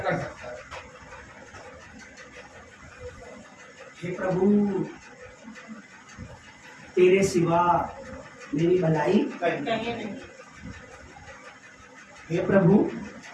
सकता है। हे प्रभु, तेरे सिवा मेरी भलाई कहीं नहीं। हे प्रभु,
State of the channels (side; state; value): both; identical; correlation 1.00